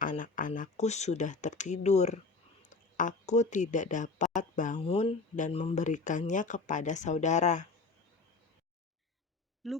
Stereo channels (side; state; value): right; quieter; 4.0 dB